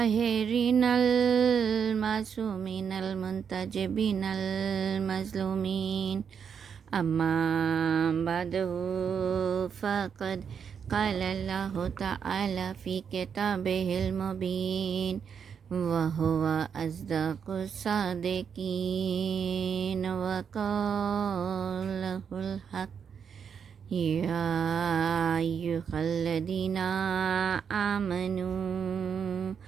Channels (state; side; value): quieter; left; 7.1 dB